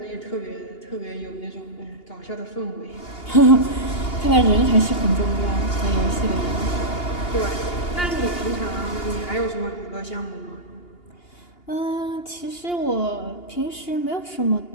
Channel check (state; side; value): late; right; 2.8 ms